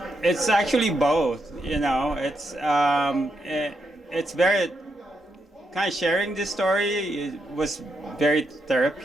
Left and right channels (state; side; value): normal; both; correlation 0.81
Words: actually both, you know. It's very kind of sharing this story. It was very